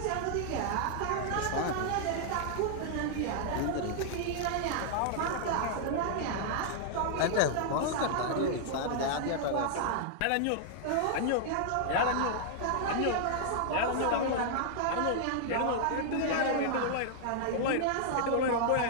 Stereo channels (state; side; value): different; both; correlation -0.01